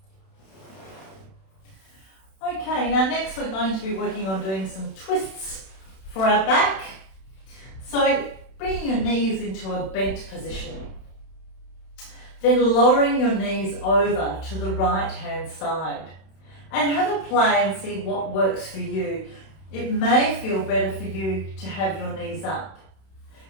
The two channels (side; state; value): right; late; 31 ms